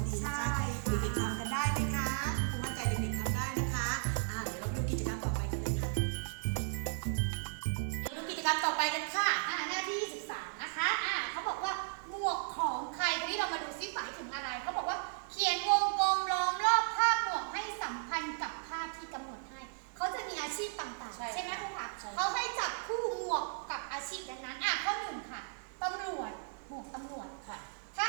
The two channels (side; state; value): left; silent; digital silence